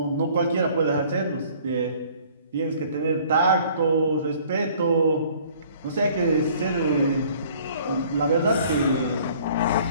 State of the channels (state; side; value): inverted; both; correlation -0.55